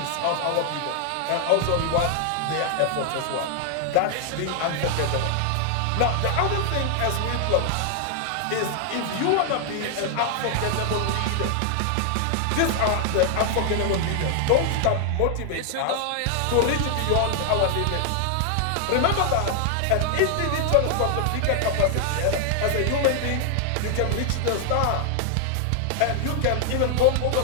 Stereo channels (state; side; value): different; both; correlation 0.00